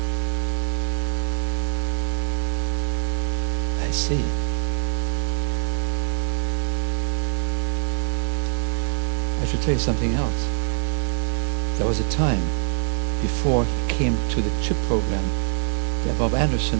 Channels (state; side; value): silent; left; digital silence